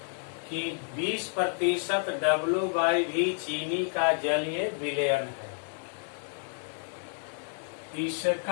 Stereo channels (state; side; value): silent; right; 58 dB below the other